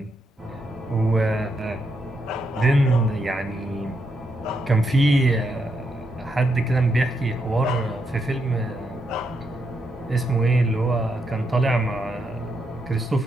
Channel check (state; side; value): normal; both; correlation 0.80